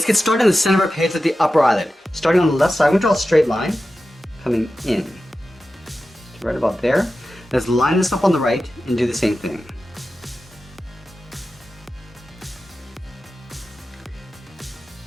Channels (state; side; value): normal; both; correlation 0.93